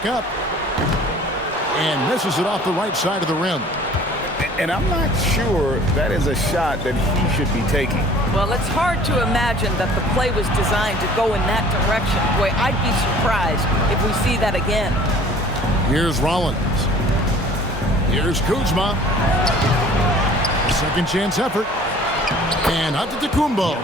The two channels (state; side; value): normal; both; correlation 0.50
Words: up. And misses it off the right side of the rim. And I'm not sure that is a shot that he should be taking. Well, it's hard to imagine that the play was designed to go in that direction. Boy, I'd be surprised if we see that again. Here's Rollins. Here's Kuzma. Second chance effort. And Antetokounmpo